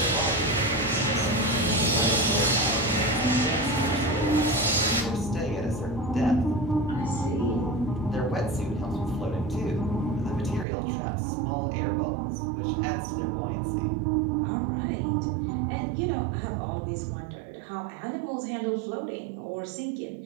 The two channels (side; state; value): left; drops out; at 10.7 s